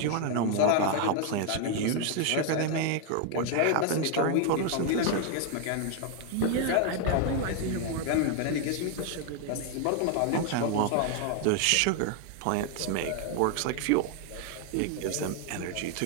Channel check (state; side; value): different; both; correlation 0.00